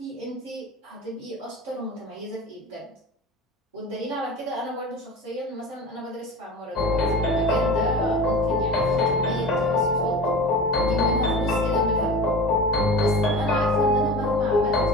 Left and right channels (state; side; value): normal; both; correlation 0.33